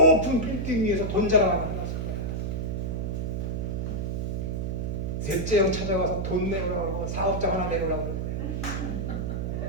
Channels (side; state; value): right; noise; hum, 1 dB below the sound